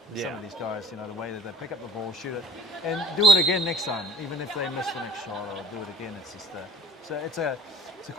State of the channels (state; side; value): normal; both; correlation 0.46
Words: Some of these guys, you know, the way that they pick up the ball, shoot it, and do it again next time, even if they miss the next shot or do it again. It's just it's a